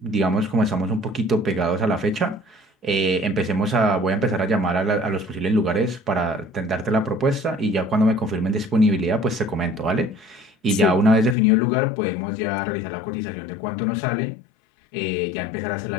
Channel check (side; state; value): right; drops out; at 11.4 s